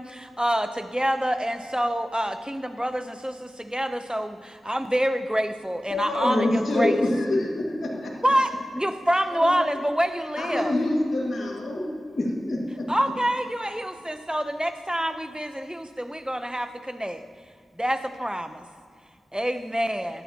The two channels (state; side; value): normal; both; correlation 0.96